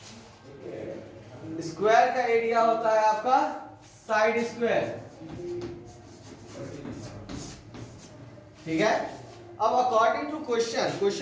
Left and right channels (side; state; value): both; identical; correlation 1.00